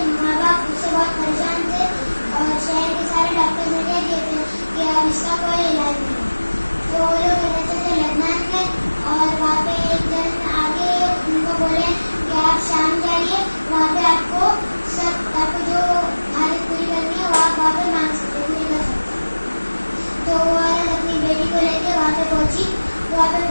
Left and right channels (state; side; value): inverted; both; correlation -1.00